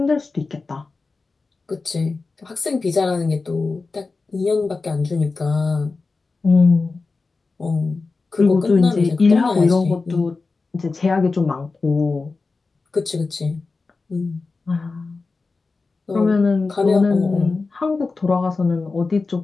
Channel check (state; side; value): quieter; right; 4.0 dB